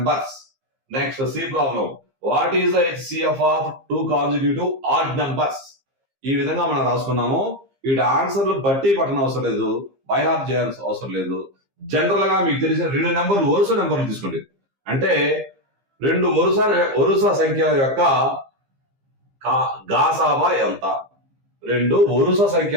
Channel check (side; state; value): left; late; 15 ms